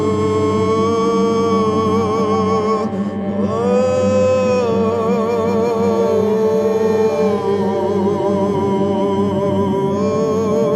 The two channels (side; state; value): both; identical; correlation 1.00